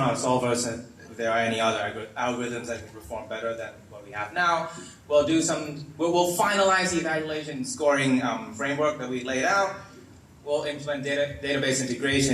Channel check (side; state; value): both; identical; correlation 1.00